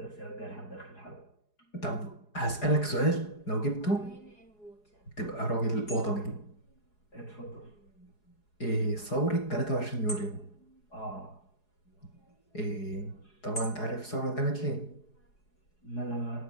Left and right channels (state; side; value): late; right; 4.8 ms